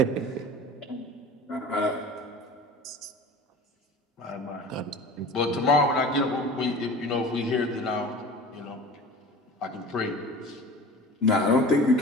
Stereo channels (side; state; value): both; normal; correlation 0.39